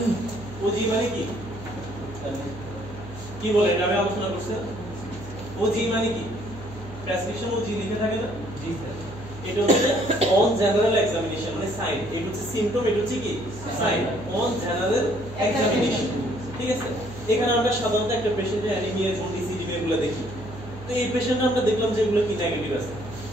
মানে কি কি বলে এটা আমি আলোচনা করছি। ওজি মানে কি? প্রেসক্রিপশন ওজি লিখে থাকে না? জি স্যার। এটা হচ্ছে অন জেনারেল এক্সামিনেশন মানে সাইন। এটা হচ্ছে সিম্পটম, এটা হচ্ছে কি সাইন অন জেনারেল এক্সামিনেশন। ঠিক আছে, এখানে আমরা সাধারণত একটা পেশেন্টের অ্যানিমিয়া, জন্ডিস, ইডিমা এগুলো দেখি। তো এই পেশেন্টটা আমরা দেখলাম যে এগুলো কি নেগেটিভ আছে,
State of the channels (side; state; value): right; noise; hum, 14 dB below the sound